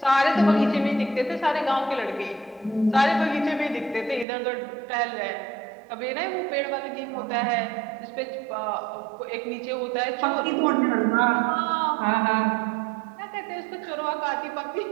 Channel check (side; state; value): left; drops out; at 4.2 s